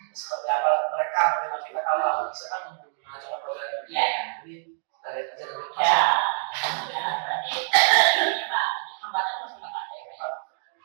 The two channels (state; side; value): silent; left; 61 dB below the other